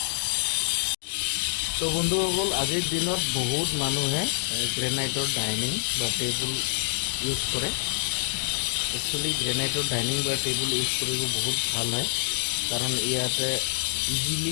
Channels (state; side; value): silent; right; digital silence